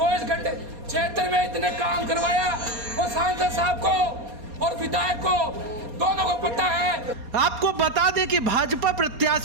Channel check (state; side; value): late; left; 4.2 ms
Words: घंटे क्षेत्र में इतने काम करवाया, और सांसद साहब को और विधायक को दोनों को पता है। आपको बता दें कि भाजपा